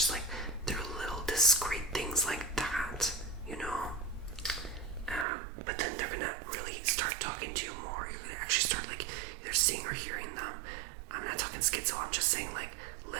like through little discreet things like that, you know. But then they're gonna really start talking to you more. You're gonna actually start like either seeing or hearing them. I'm not talking schizo, I'm just saying like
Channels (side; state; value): left; drops out; at 5.2 s